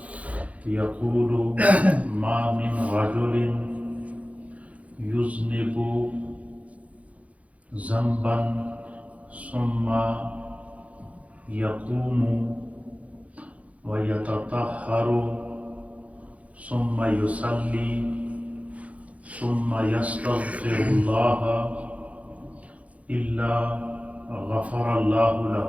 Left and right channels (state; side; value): late; left; 0.066 ms